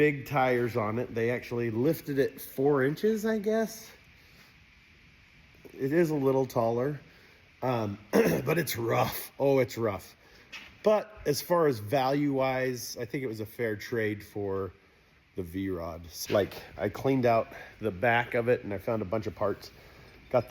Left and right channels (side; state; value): both; identical; correlation 1.00